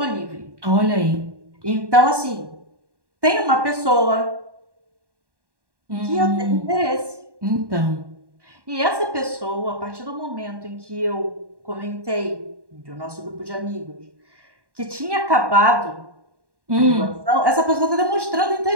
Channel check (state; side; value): late; left; 1.1 ms